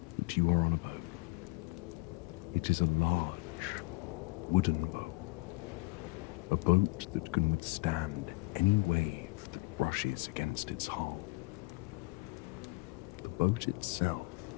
that you are on a boat. It is a large wooden boat, a boat that can withstand any wave that brushes against its hull. The boat itself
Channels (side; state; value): right; quieter; 24.0 dB